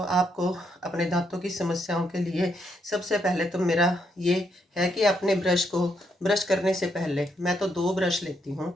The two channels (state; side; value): normal; both; correlation 0.76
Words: अपने दांतों की समस्याओं के लिए सबसे पहले तो मेरा ये है कि अपने ब्रश को ब्रश करने से पहले मैं तो 2 ब्रश लेती हूँ